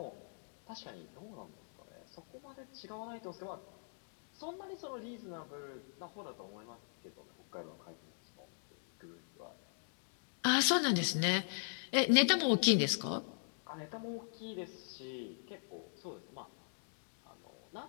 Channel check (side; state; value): right; silent; digital silence